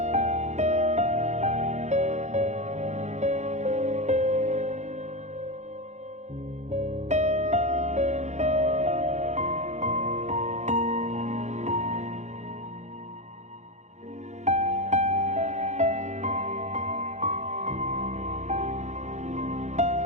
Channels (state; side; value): late; left; 0.33 ms